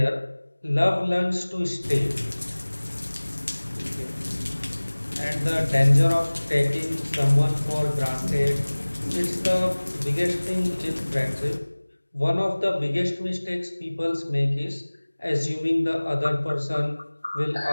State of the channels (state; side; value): inverted; both; correlation -1.00